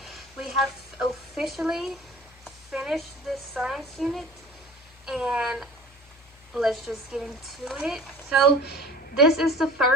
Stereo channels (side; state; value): left; noise; hum, 26 dB below the sound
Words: We have officially finished this science unit, and let's just get into it. So this is the